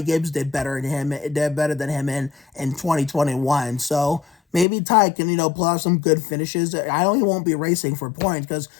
Gibbs did better than him in 2021. So maybe Ty can, pull out some good finishes. I know he won't be racing for points because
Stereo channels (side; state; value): right; drops out; at 4.7 s